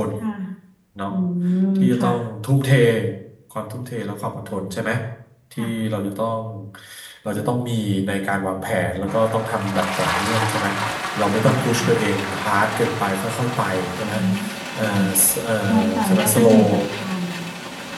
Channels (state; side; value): identical; both; correlation 1.00